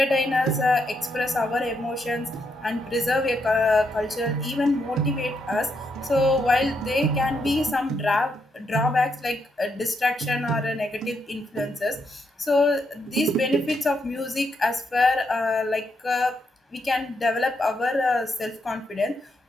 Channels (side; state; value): both; normal; correlation 0.79